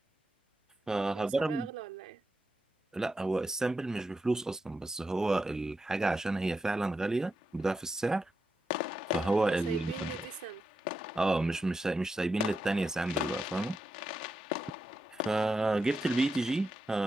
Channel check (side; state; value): both; normal; correlation 0.87